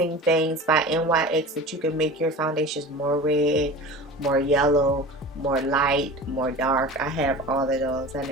things by NYX that you can make your foundations more red, more yellow, more light, more dark. I have all of those. I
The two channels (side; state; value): both; normal; correlation 0.35